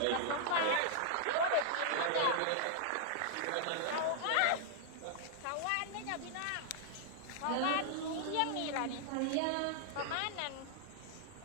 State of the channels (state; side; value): different; both; correlation -0.01